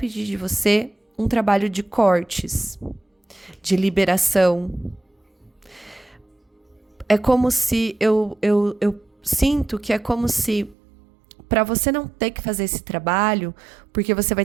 de você um trabalho de cortes, de liberação. É como se, eu sinto que é como se, para você não ter que fazer esse trabalho, porque você vai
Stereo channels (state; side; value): drops out; left; at 10.8 s